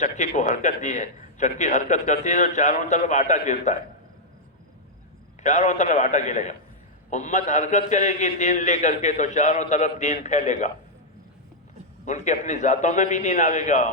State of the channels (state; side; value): normal; both; correlation -0.04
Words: کو حرکت دی ہے۔ چکی حرکت کرتی ہے تو چاروں طرف آٹا گرتا ہے، چاروں طرف آٹا گرے گا۔ امت حرکت کرے گی دین لے کر کے تو چاروں طرف دین پھیلے گا، ان کے اپنی ذاتوں میں بھی دین آئے گا،